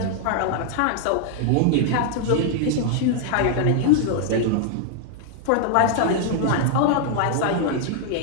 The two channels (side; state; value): both; different; correlation 0.00